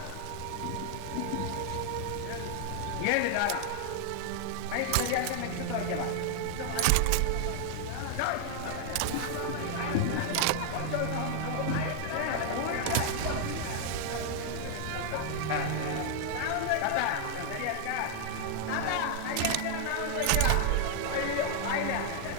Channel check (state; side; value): different; both; correlation 0.00